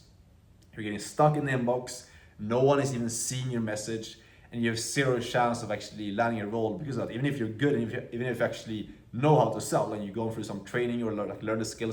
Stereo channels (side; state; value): both; identical; correlation 1.00